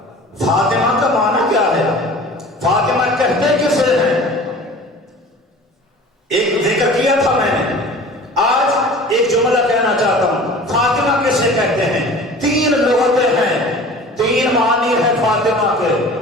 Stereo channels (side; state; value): both; normal; correlation 0.42